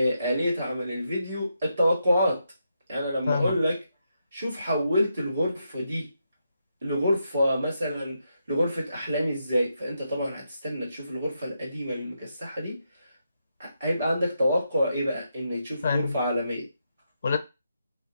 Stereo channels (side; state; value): both; inverted; correlation -0.83